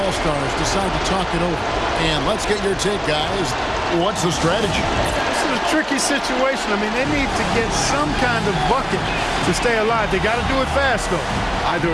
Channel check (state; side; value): identical; both; correlation 1.00